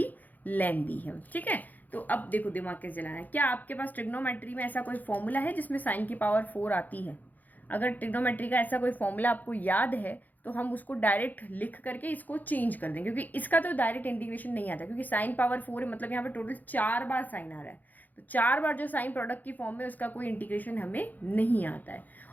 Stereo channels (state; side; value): late; right; 0.083 ms